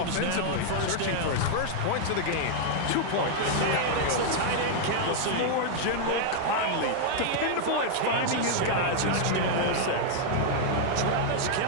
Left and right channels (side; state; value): both; different; correlation -0.01